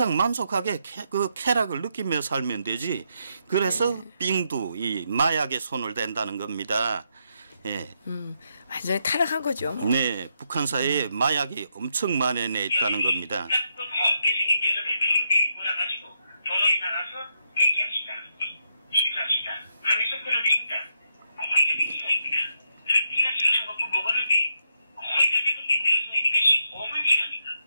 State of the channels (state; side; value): inverted; both; correlation -0.79